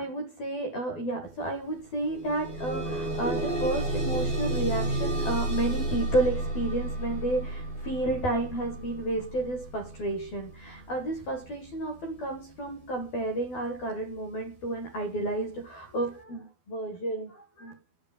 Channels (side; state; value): right; late; 12 ms